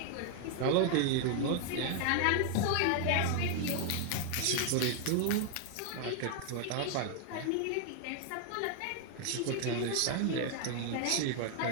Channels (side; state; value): both; different; correlation 0.00